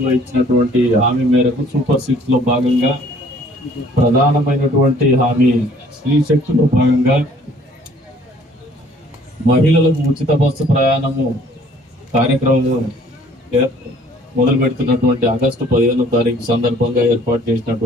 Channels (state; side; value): normal; both; correlation 0.57